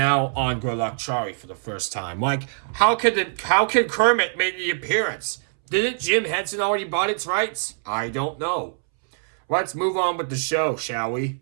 on Good Luck Charlie for the first time. Like, how could Kermit make the appearance? Didn't Jim Henson already bought its rights? I don't know. Let's move on with the show, shall we?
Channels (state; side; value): silent; left; 63 dB below the other